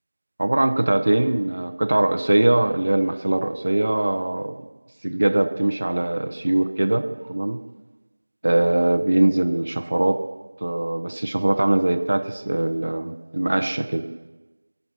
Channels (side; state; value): both; inverted; correlation -1.00